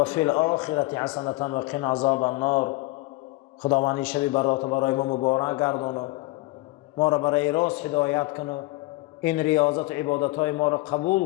الآخرة حسنة وقنا عذاب النار. خداوندی شب برات برای ما مبارک گردانو ما را برای راست هدایت کنو این ریاضت و عبادت های ما را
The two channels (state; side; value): quieter; right; 21.0 dB